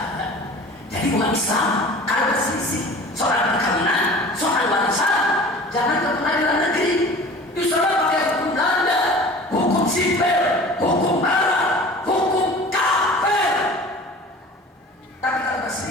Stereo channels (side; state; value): both; normal; correlation 0.41